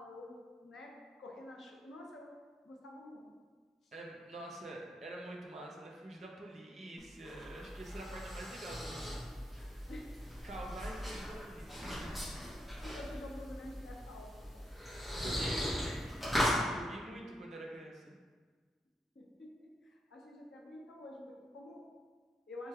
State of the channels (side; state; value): both; normal; correlation 0.81